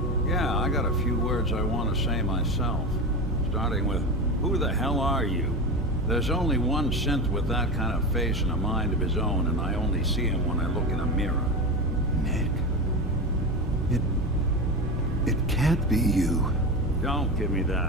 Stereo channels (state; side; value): normal; both; correlation 0.23